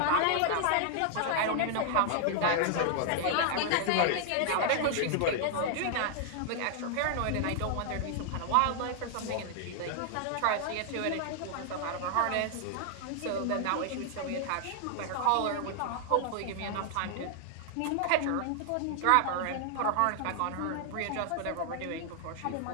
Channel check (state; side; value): different; both; correlation 0.00